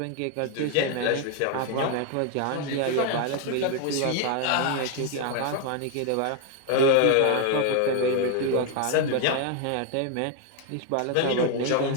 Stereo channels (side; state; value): both; different; correlation 0.01